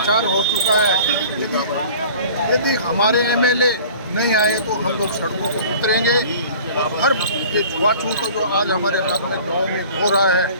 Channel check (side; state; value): both; inverted; correlation -0.45